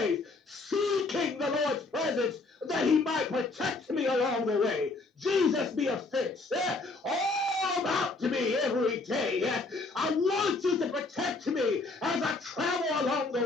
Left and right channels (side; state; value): right; quieter; 3.5 dB